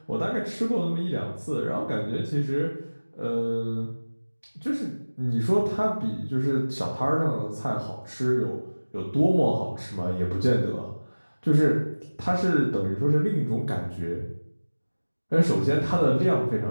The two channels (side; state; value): both; inverted; correlation -1.00